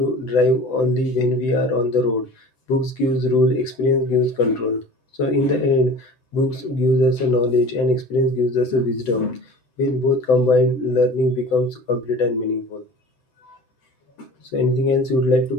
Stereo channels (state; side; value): late; right; 7.9 ms